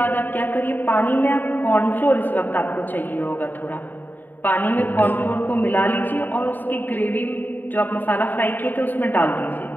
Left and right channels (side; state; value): right; late; 0.089 ms